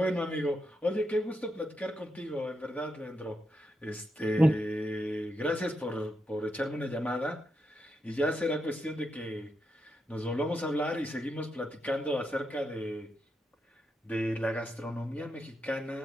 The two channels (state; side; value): normal; both; correlation 0.84